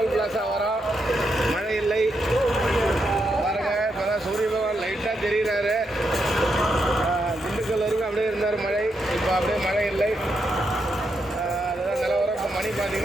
பிளாஸா வரோம். மழை இல்லை பாருங்க. இப்போ தான் சூரிய பகவான் லைட்டாக தெரிகிறாரு. திண்டுக்கல் வரைக்கும் அப்படியே இருந்தார் மழை. இப்போ அப்படியே மழை இல்லை. அதுதான் நிலவரம். இப்போ மணி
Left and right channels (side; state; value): both; normal; correlation 0.82